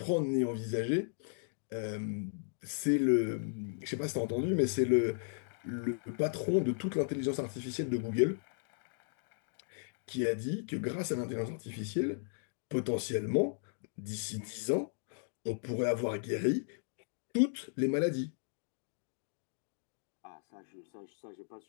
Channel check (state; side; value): silent; right; digital silence